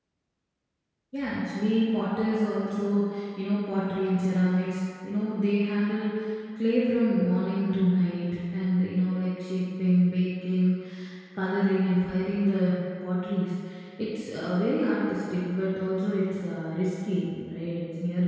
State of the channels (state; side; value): identical; both; correlation 1.00